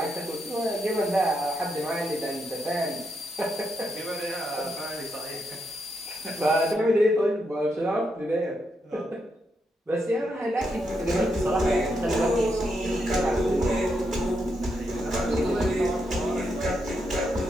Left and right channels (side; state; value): both; normal; correlation 0.81